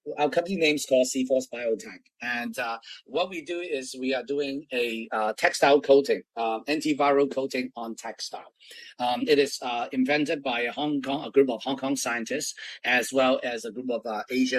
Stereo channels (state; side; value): identical; both; correlation 1.00